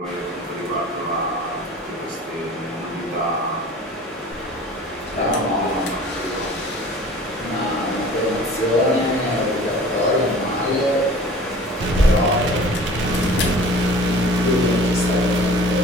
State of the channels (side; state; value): both; normal; correlation 0.44